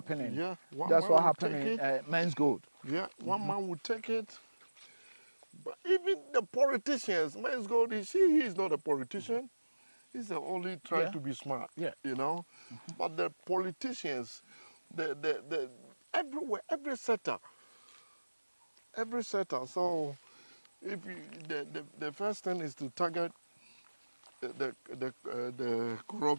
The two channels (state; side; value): inverted; both; correlation -1.00